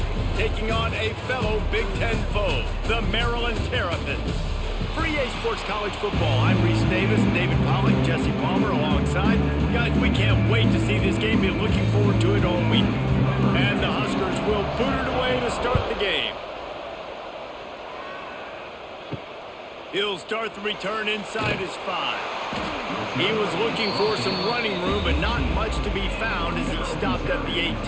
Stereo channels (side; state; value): both; identical; correlation 1.00